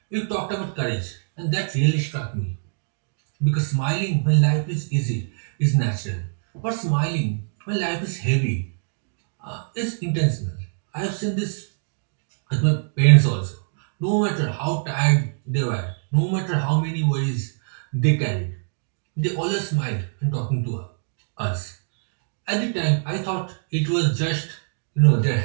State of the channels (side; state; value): left; silent; digital silence